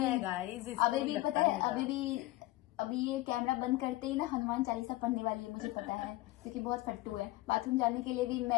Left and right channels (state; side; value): quieter; right; 18.3 dB